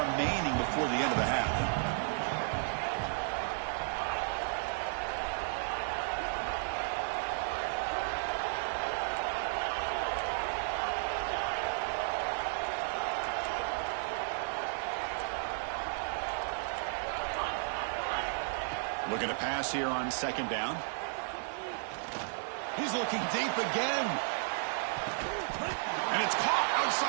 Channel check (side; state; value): left; silent; digital silence